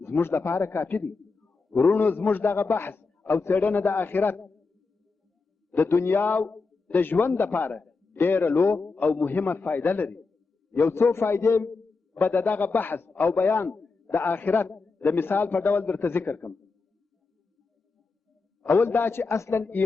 زموږ لپاره کافي دی ورونو زموږ دغه بحث او څېړنه د آخرت د دنیا د ژوند لپاره ډېره لو او مهمه فایده لري یو څو فایدې به د دغه بحث او بیان د آخرت د مثال په ډول درته ذکر کړم اول دا چې اصلا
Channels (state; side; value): quieter; right; 4.2 dB